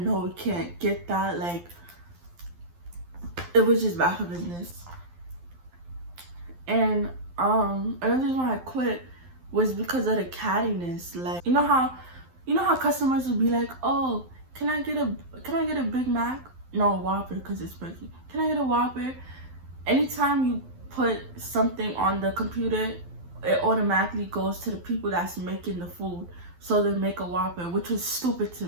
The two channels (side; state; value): left; late; 12 ms